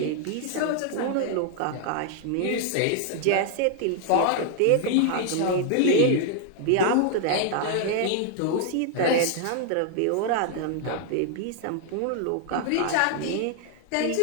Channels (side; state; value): both; different; correlation 0.00